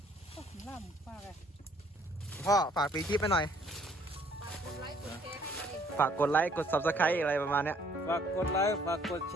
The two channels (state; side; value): normal; both; correlation 0.61